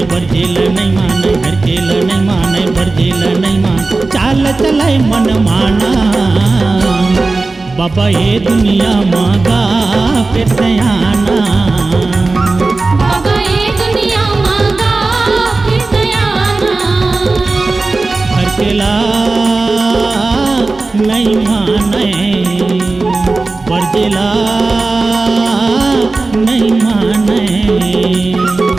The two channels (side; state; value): left; quieter; 3.5 dB